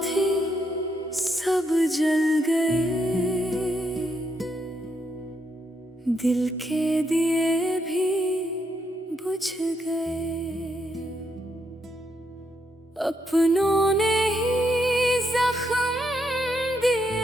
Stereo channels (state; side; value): normal; both; correlation 0.78